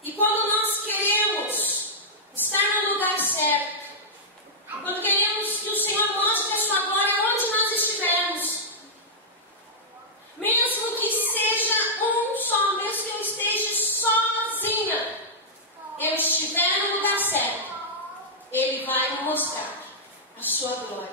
E quando nós queremos estar no lugar certo, quando queremos que o Senhor mostre a sua glória onde nós estivermos, mesmo que seja um só, mesmo que eu esteja sozinha, eu estiver no lugar certo, Ele vai me mostrar a sua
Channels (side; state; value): both; normal; correlation -0.09